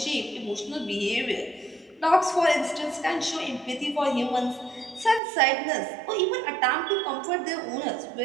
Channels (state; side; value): drops out; left; at 5.2 s